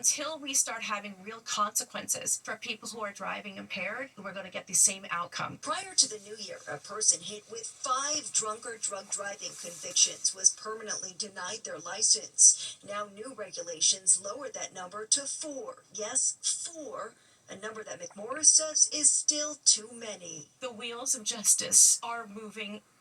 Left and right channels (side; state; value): both; identical; correlation 1.00